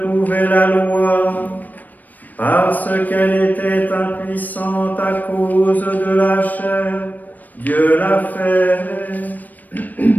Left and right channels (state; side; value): late; right; 0.084 ms